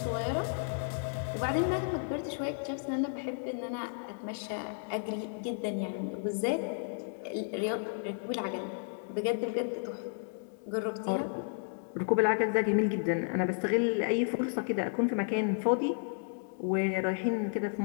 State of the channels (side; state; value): right; silent; digital silence